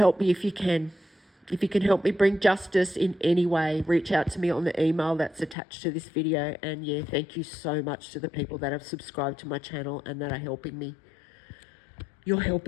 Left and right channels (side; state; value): right; drops out; at 5.6 s